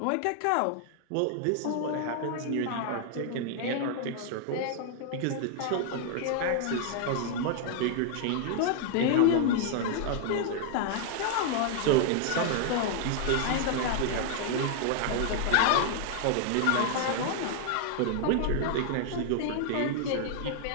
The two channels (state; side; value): different; both; correlation 0.00